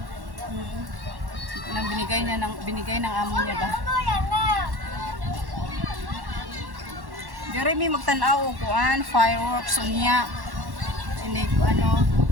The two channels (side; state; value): left; late; 1.1 ms